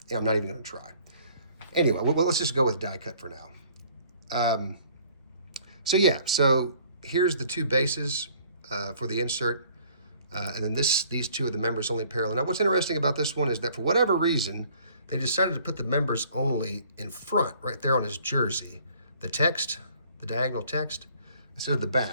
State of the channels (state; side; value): inverted; both; correlation -0.57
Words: yeah, I'm not even going to try. Anyway, well, let's just go with die cut for now. So here's the two bases for the insert, and then these two are the members only parallel. Now, what's interesting about this one is that for whatever reason, they decided to put the members only in front, right there on his jersey. The text, the diagonal text, instead of the